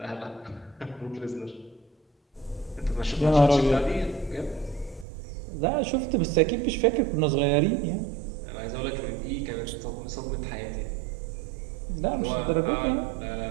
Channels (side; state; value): left; drops out; at 5.1 s